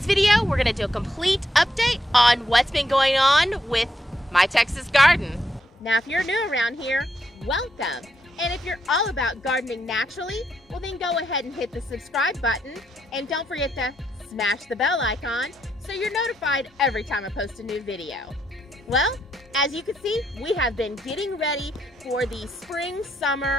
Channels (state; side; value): normal; both; correlation 0.78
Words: video, we're gonna do a complete update on what's been going on with my Texas garden. Now, if you're new around here, welcome. And if you're all about gardening naturally, well then go ahead and hit the subscribe button. And don't forget to smash the bell icon so you're notified every time I post a new video. Well, as you can see, we have been getting ready for the